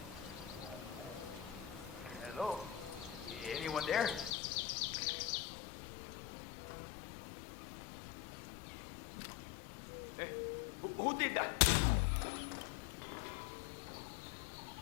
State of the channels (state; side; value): drops out; right; at 4.3 s